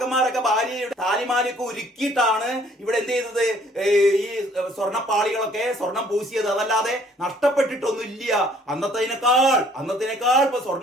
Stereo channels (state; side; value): normal; both; correlation 0.59